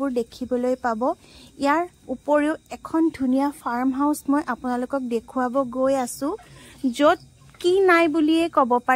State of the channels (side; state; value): both; identical; correlation 1.00